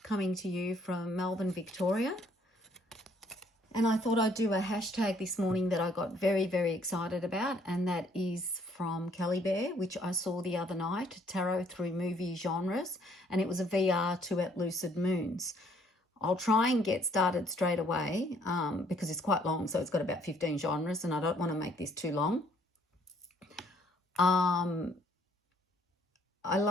coming to you from Melbourne, Victoria. And I thought I'd do a hashtag this morning that I got very, very excited about, and that is from Kelly Bear, which I saw the other night, Tarot Through Movie Genres, and it was a VR to at Lucid Moons. I'll try and get started straight away because it's quite long, so it's got about 15 genres and I don't want to make this too long. I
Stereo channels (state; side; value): normal; both; correlation 0.63